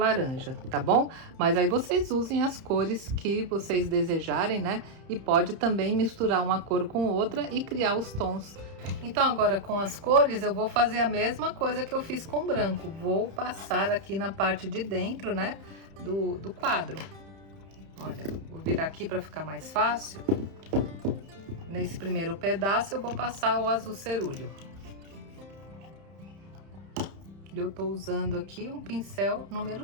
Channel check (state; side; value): late; left; 31 ms